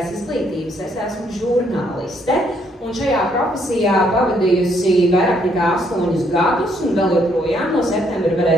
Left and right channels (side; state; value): both; normal; correlation 0.70